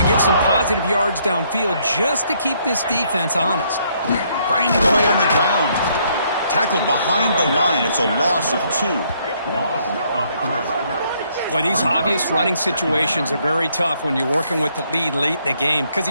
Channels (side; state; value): both; inverted; correlation -0.69